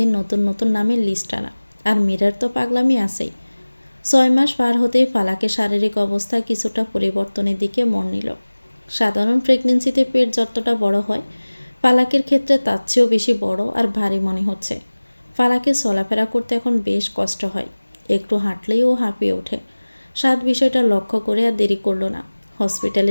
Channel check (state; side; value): inverted; both; correlation -1.00